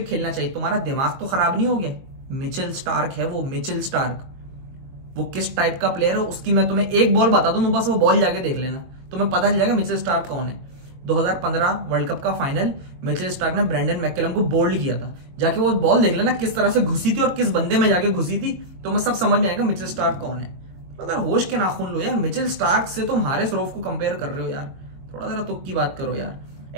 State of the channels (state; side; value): late; left; 22 ms